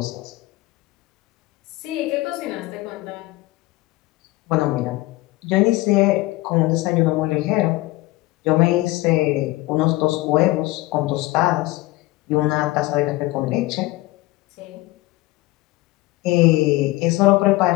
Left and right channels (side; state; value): right; quieter; 19.8 dB